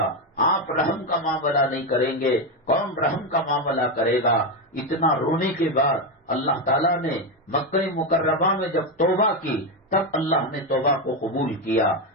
آپ رحم کا معاملہ نہیں کریں گے کون رحم کا معاملہ کرے گا۔ اتنا رونے کے بعد اللہ تعالیٰ نے مکہ مکرمہ میں جب توبہ کی تب اللہ نے توبہ کو قبول کیا۔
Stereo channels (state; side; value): normal; both; correlation 0.09